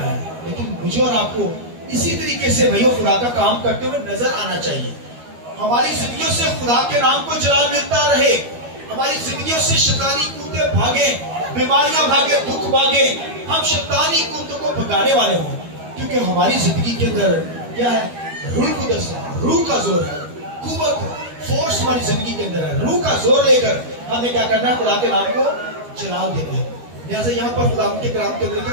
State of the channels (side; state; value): left; late; 12 ms